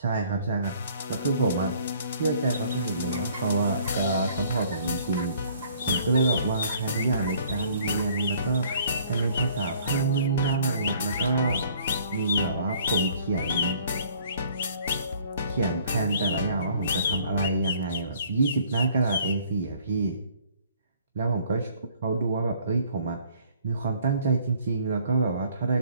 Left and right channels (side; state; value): both; inverted; correlation -0.58